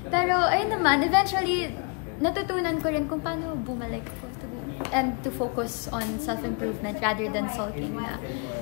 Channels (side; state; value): right; quieter; 35.2 dB